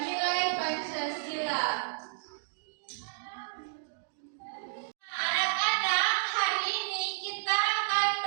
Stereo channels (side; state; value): left; silent; digital silence